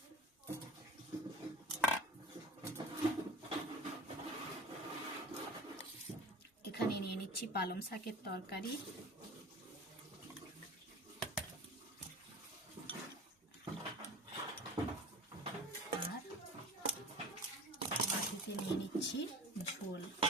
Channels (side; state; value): both; normal; correlation 0.37